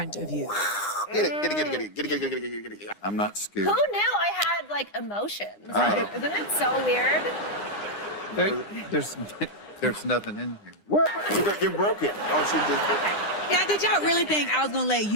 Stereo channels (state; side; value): late; right; 9.8 ms